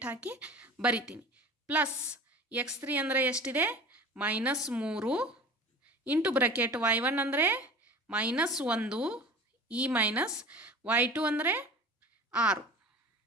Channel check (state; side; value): normal; both; correlation 0.39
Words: ಹಾಕಿ ಬರಿತೀನಿ. ಪ್ಲಸ್ x3 ಅಂದರೆ ಎಷ್ಟಿದೆ? -3 ಇಂಟು ಬ್ರ್ಯಾಕೆಟ್ y1 ಅಂದರೆ -1, ಈ ಮೈನಸ್ y2 ಅಂದರೆ 6.